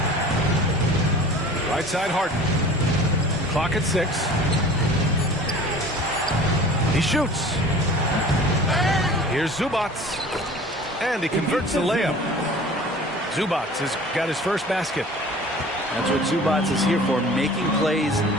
Right side Harden. Clock at 6. He shoots. Here's Zubac. And he converts the layup. Zubac has got his first basket. That's what Zubac is here for, making plays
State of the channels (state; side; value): normal; both; correlation 0.44